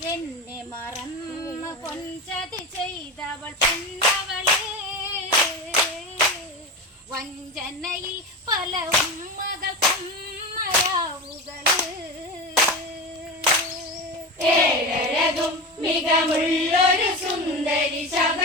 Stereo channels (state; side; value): normal; both; correlation 0.24